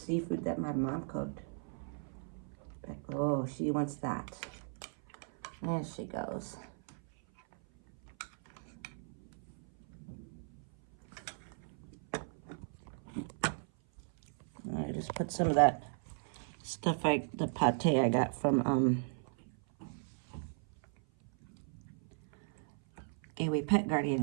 that my mom cooked. Oh, she wants that. There she goes. I just put some of that stuff, the pate I got from Gateway Pet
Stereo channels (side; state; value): left; silent; 53 dB below the other